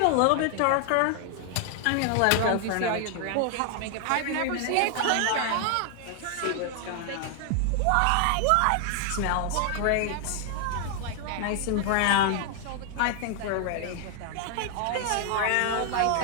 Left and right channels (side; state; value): both; different; correlation 0.00